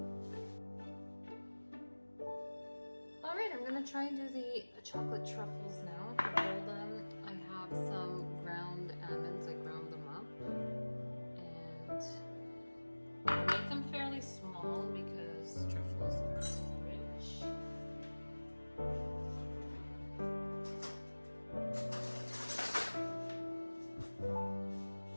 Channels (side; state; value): both; inverted; correlation -1.00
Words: Alright, I'm gonna try and do the chocolate truffles now. To roll them, I have some ground almonds. I ground them up. And I make them fairly small because truffles are rich.